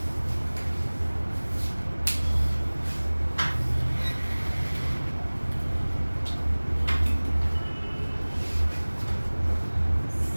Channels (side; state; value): both; inverted; correlation -1.00